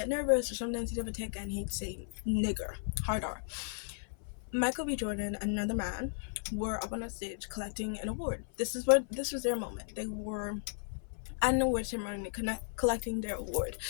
nervous, or sometimes he'd have a tic and he'd say nigger, hard R. Michael B. Jordan and another man were up on a stage collecting an award. This was their moment. They were at an award ceremony collecting their award.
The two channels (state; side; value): silent; right; 55 dB below the other